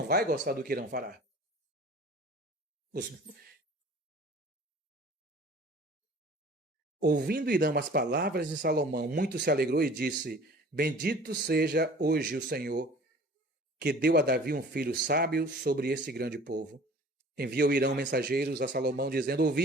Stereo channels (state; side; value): normal; both; correlation 0.47